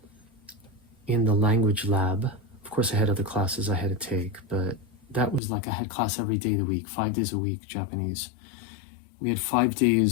in the language lab. Of course, I had other classes I had to take, but that was like I had class every day of the week, 5 days a week, Japanese. We had 5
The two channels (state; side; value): drops out; right; at 5.4 s